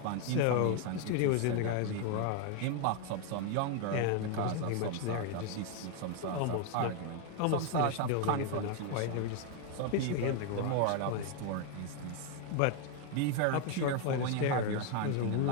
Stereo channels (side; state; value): both; different; correlation 0.01